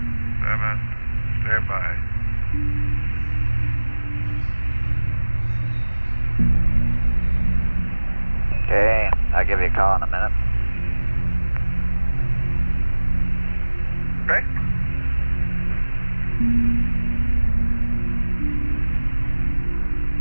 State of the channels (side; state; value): both; inverted; correlation -1.00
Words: Standby. Okay, I'll give you a call in a minute. Okay.